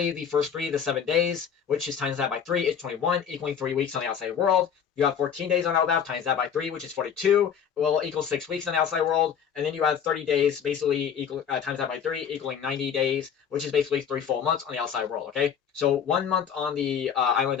the first 3, the 7 days, which is times that by 3, is 21, equaling 3 weeks on the outside world. You have 14 days on Elbaph, times that by 3, which is 42, will equal 6 weeks on the outside world. And then you have 30 days, basically, times that by 3, equaling 90 days, which is basically 3 full months on the outside world, okay? So 1 month on the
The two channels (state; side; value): quieter; right; 7.8 dB